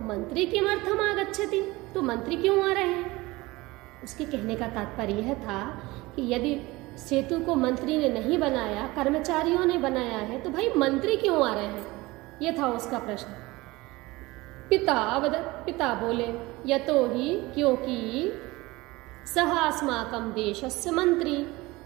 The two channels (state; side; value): quieter; left; 21.1 dB